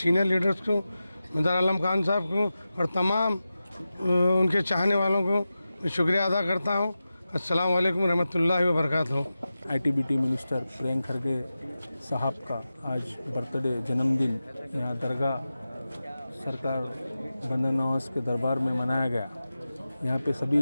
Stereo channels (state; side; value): inverted; both; correlation -0.93